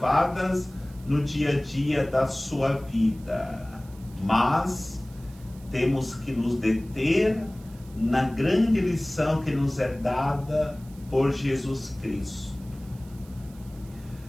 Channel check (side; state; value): right; noise; hiss, 25 dB below the sound